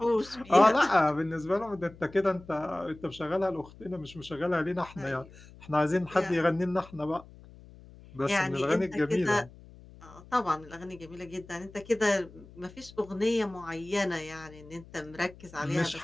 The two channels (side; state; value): left; noise; hum, 21 dB below the sound